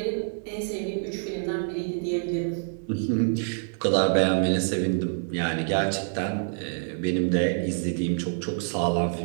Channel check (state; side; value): silent; left; digital silence